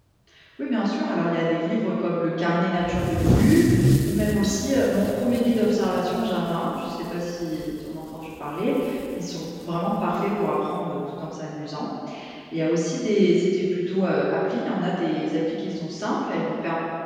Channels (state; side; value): identical; both; correlation 1.00